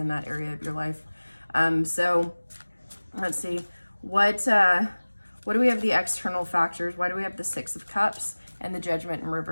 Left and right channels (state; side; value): inverted; both; correlation -1.00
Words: that area of your life. So let's see, what do we have the external factors? Why do we have the Six of Cups and the Judgment in